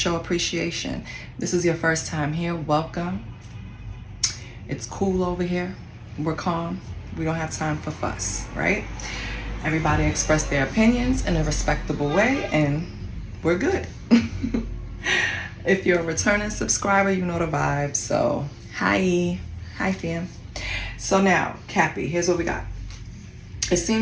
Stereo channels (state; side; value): identical; both; correlation 1.00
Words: appreciation. This is your first time here, welcome. It's cool over here. We're calm. We don't have time for fuss, right? Everybody express their opinions in a respectable way, and we're good. If you're a returning subscriber, you know the vibes. So, hi fam. So now, Cappy, here's what we got. It